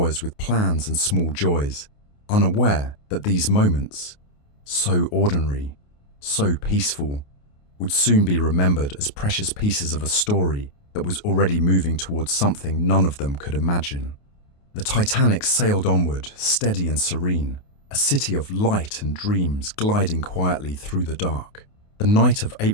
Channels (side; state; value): right; late; 28 ms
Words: with plans and small joys, unaware that these moments, so ordinary, so peaceful, would soon be remembered as precious pieces of a story that was already moving towards something none of them could imagine. The Titanic sailed onward, steady and serene, a city of light and dreams gliding quietly through the dark. The night of